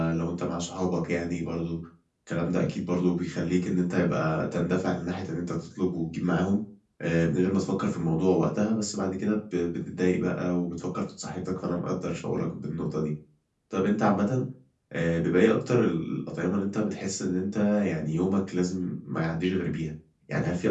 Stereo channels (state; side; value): identical; both; correlation 1.00